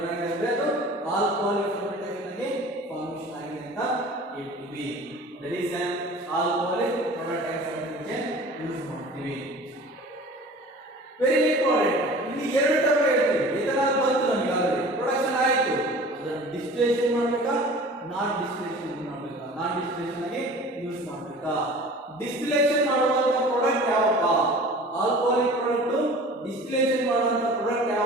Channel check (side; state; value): both; normal; correlation 0.42